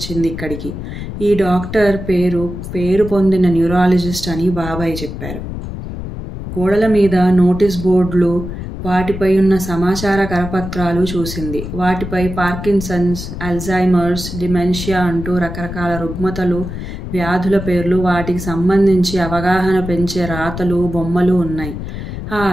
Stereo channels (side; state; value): left; noise; rumble, 8 dB below the sound